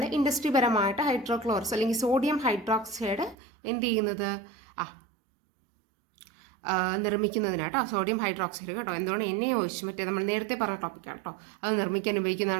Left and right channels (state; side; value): drops out; left; at 3.4 s